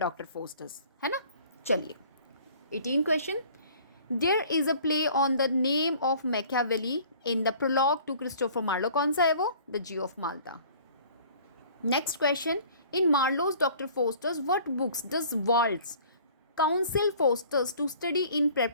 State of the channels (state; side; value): inverted; both; correlation -0.51